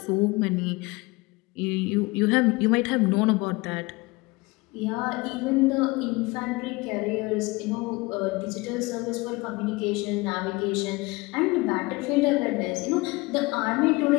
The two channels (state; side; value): quieter; right; 23.5 dB